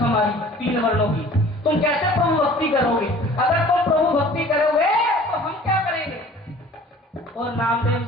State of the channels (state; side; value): normal; both; correlation 0.48